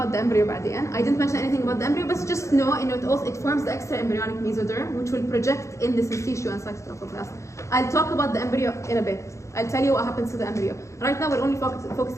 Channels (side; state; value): right; late; 0.14 ms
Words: the embryo بعدين. I didn't mention anything about the embryo, but just know it forms the extra embryonic mesoderm, which will project in the syncytia and cytotrophoblast. I'll talk about the embryo in a bit. I'll tell you what happens to the embryo. Right now, we're only